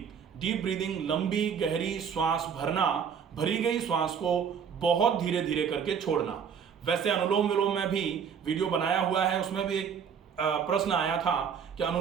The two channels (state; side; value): quieter; left; 7.2 dB